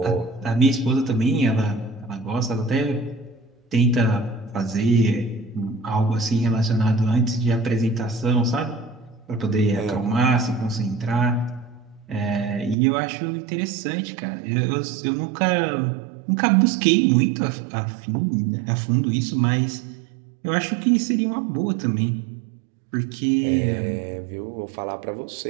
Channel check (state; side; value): drops out; left; at 12.8 s